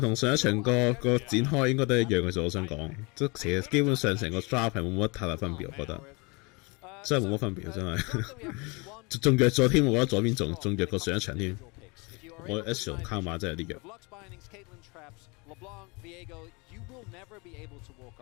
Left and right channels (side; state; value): right; quieter; 28.5 dB